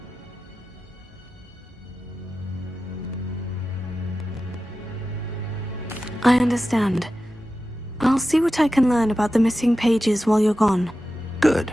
I understand. I'll see what I can learn about the missing pages while you're gone. Good.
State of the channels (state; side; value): normal; both; correlation 0.93